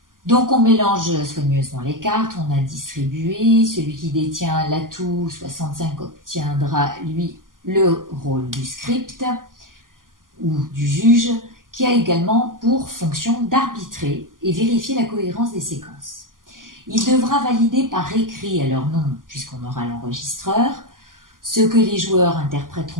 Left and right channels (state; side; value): late; left; 0.90 ms